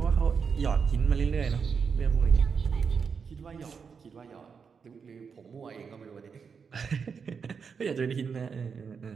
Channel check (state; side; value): quieter; left; 6.0 dB